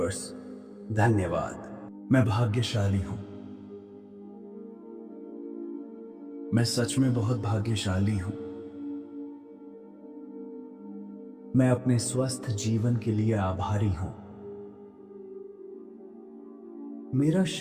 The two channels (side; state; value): both; identical; correlation 1.00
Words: धन्यवाद। मैं भाग्यशाली हूं। मैं सच में बहुत भाग्यशाली हूं। मैं अपने स्वस्थ जीवन के लिए आभारी हूं। मेरा